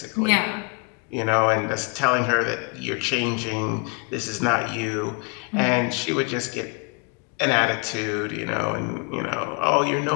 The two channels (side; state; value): right; quieter; 32.9 dB